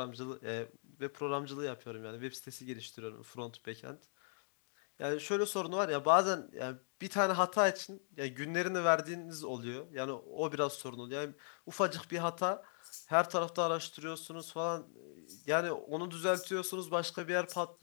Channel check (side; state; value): right; silent; digital silence